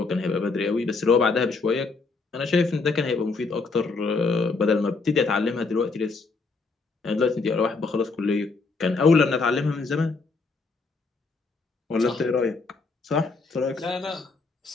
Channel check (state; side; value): quieter; right; 4.1 dB